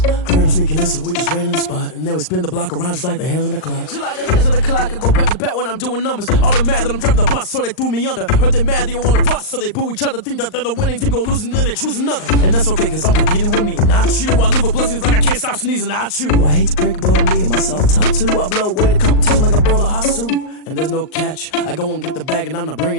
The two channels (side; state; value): right; late; 39 ms